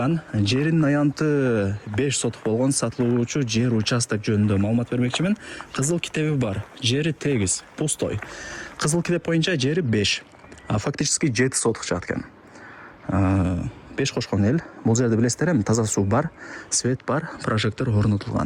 жеринин аянты 5 сотук болгон сатылуучу жер участок жөнүндө маалымат бермекчимин. Кызыл китеби бар, жери тегиз, пустой. Кызыл китеп боюнча жери 5, а фактически 7 сотук чыгат экен. 5 кошкон эл. Бул жерде билесиздер эми таза суу бар, свет бар, прожектор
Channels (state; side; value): identical; both; correlation 1.00